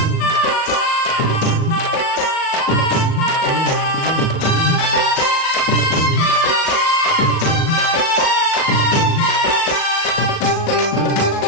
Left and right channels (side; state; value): right; late; 37 ms